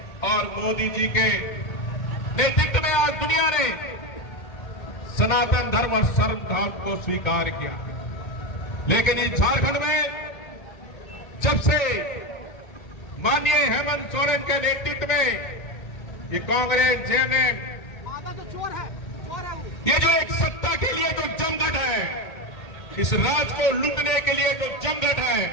और मोदी जी के नेतृत्व में आज दुनिया ने सनातन धर्म और सर्वधर्म को स्वीकार किया। लेकिन इस झारखंड में जब से माननीय हेमंत सोरेन के नेतृत्व में ये कांग्रेस, जेएमएम, ये जो एक सत्ता के लिए जो जमघट है, इस राज को लूटने के लिए जो जमघट है,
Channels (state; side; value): late; right; 2.1 ms